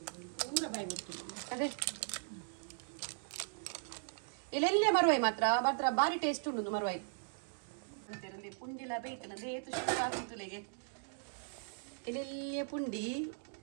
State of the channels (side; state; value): left; silent; digital silence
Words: ಪೂರ ಬಾಯಿ ಬಿಡ್ತು ಅದೇ ಇಲ್ಲೆಲ್ಲೇ ಮರುವಾಯಿ ಮಾತ್ರ ಬಾರಿ ಟೇಸ್ಟ್ ಉಂಡು ಮರುವಾಯಿ ಅಂತಿರಲಿ ಪುಂಡಿಲ ಬೇಯ್ತನದೆ ಏತು ಶೋಕ್ ಆಗಿತ್ತುಲೆಗೆ ಇಲ್ಲೆಲ್ಲೇ ಪುಂಡಿ